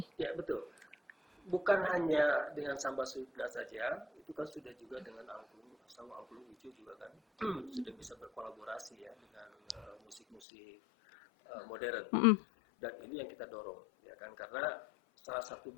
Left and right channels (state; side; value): drops out; right; at 10.4 s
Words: Ya, betul. Bukan hanya dengan Samba Sunda saja, itu kan sudah juga dengan sama Angklung Ujo juga kan sudah bisa berkolaborasi ya dengan musik-musik modern. Dan ini yang kita dorong ya kan, karena salah satu